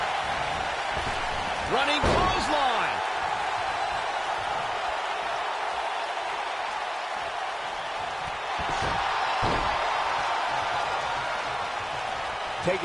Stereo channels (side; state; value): both; identical; correlation 1.00